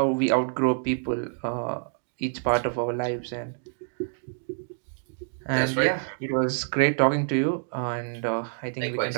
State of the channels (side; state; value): left; silent; digital silence